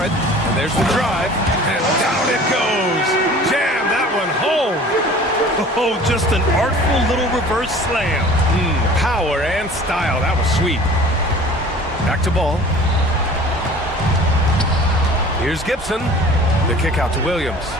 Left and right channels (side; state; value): both; normal; correlation 0.45